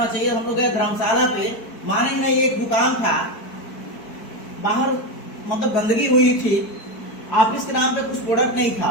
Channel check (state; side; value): late; right; 4.6 ms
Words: चाहिए। हम लोग गए धर्मशाला पे, माने नहीं एक दुकान था बाहर, मतलब गंदगी हुई थी, ऑफिस के नाम पे कुछ प्रोडक्ट नहीं था।